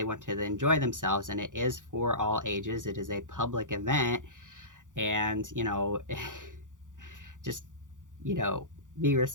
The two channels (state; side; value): late; left; 0.87 ms